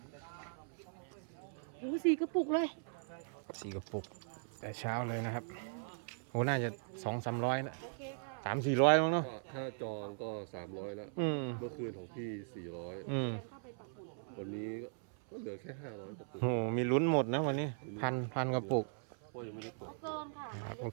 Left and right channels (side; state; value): left; silent; 52 dB below the other